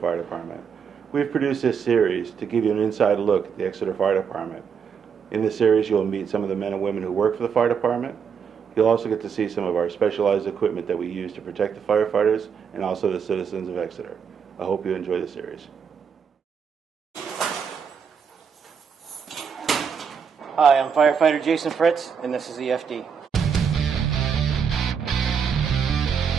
Department. We've produced this series to give you an inside look at the Exeter Fire Department. In this series, you'll meet some of the men and women who work for the fire department. You'll also get to see some of our specialized equipment that we use to protect the firefighters and also the citizens of Exeter. I hope you enjoy the series. Hi, I'm firefighter Jason Fritz, and this is EFD.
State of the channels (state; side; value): quieter; left; 6.8 dB